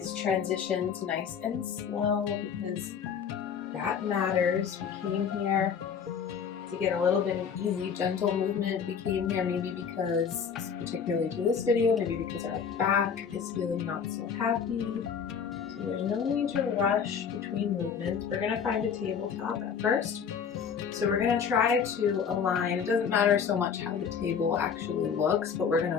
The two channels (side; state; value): right; quieter; 6.9 dB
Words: transitions nice and slow because that matters. We came here to get a little bit of easy, gentle movement. We came here maybe because, particularly to this video, maybe because our back is feeling not so happy. So there's no need to rush between movements. We're gonna find a tabletop at first. So we're gonna try to align, it doesn't matter so much how the table actually looks, but we're